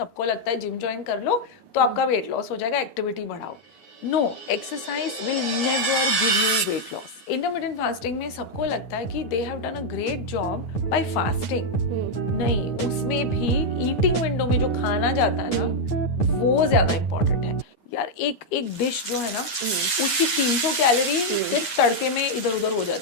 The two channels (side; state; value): right; late; 9.6 ms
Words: सबको लगता है जिम ज्वाइन कर लो तो आपका वेट लॉस हो जाएगा, एक्टिविटी बढ़ाओ। No, exercise will never give you weight loss. Intermittent fasting में सबको लगता है कि they have done a great job by fasting. नहीं, उसमें भी ईटिंग विंडो में जो खाना जाता है ना वो ज्यादा इंपॉर्टेंट है यार। एक डिश जो है ना उसकी 300 कैलोरी सिर्फ तड़के में इधर उधर हो